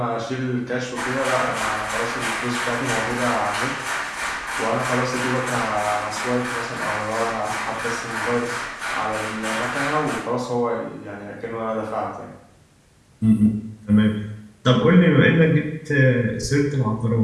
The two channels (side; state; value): both; identical; correlation 1.00